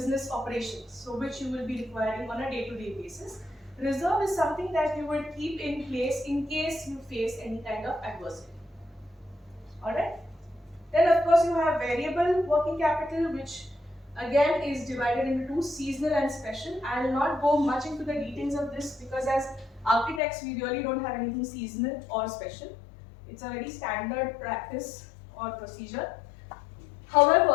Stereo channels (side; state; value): right; drops out; at 20.2 s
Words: operations, so which you will be requiring on a day-to-day basis. Reserve is something that you will keep in place in case you face any kind of adversity. Alright? Then of course you have variable working capital, which again is divided into two, seasonal and special. I will not go much into the details of this because as architects we really don't have anything seasonal or special. It's a very standard practice or procedure.